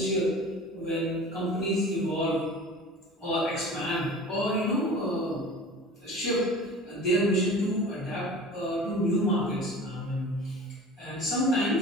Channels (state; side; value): normal; both; correlation 0.40